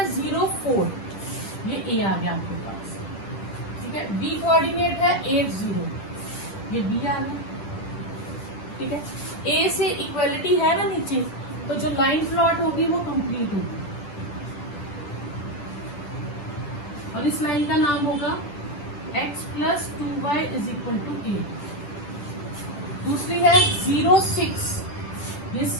0 4, ये A आ गया आपके पास। ठीक है, B कोऑर्डिनेट है 8 0, ये B आ गया। ठीक है, A से इक्वलिटी है ना नीचे, तो जो लाइन प्लॉट होगी वो कंप्लीट होगी और इस लाइन का नाम होगा x plus 2y is equal to 8। दूसरी है 0 6, ये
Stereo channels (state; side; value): late; right; 10 ms